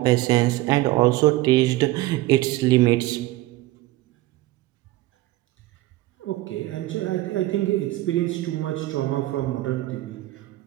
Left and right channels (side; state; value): left; quieter; 17.9 dB